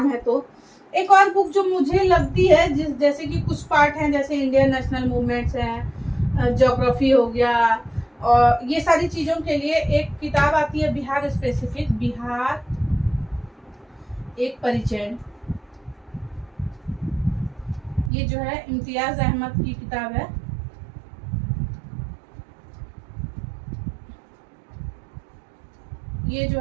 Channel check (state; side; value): drops out; left; at 18.1 s